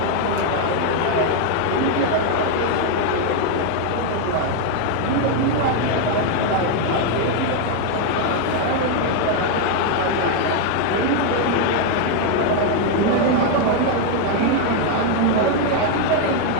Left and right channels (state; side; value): different; both; correlation 0.01